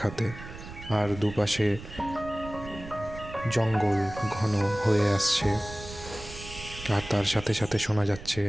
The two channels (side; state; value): right; noise; rumble, 14 dB below the sound